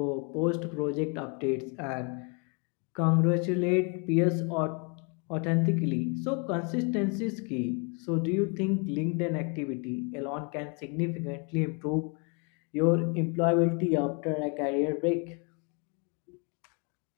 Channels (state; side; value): quieter; right; 35.0 dB